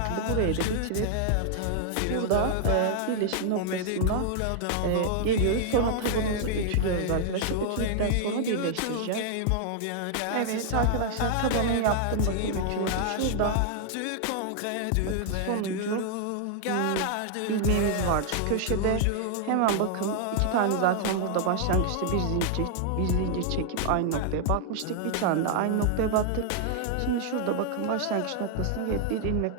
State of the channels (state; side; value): different; both; correlation 0.00